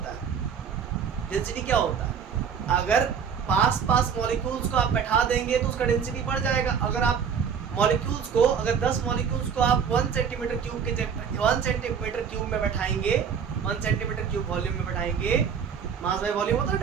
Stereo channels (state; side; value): quieter; left; 7.0 dB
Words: है, अगर पास मॉलिक्यूल्स को आप बैठा देंगे तो उसका डेंसिटी बढ़ जाएगा। अगर आप मॉलिक्यूल्स को, अगर 10 मॉलिक्यूल्स को आप 1 सेंटीमीटर क्यूब में बैठाएंगे 1 सेंटीमीटर क्यूब वॉल्यूम में बैठाएंगे, मास बाय वॉल्यूम होता है